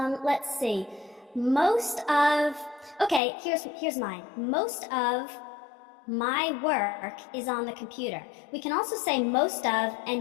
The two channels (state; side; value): drops out; right; at 3.2 s